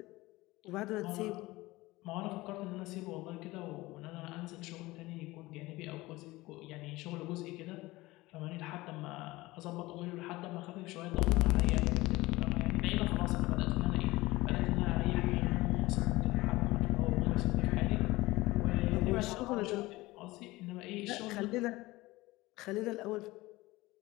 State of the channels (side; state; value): right; quieter; 19.9 dB